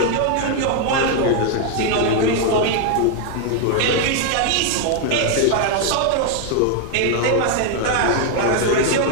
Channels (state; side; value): different; both; correlation 0.00